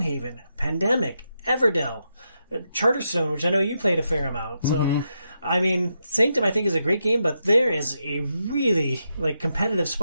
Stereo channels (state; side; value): inverted; both; correlation -0.84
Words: Pandemic, Everdell, Charterstone, which I know you played a fair amount. So, I mean, Sanctum I think is a great game, but there is a really like competitive